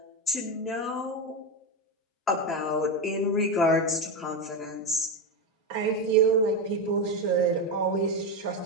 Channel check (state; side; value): normal; both; correlation 0.13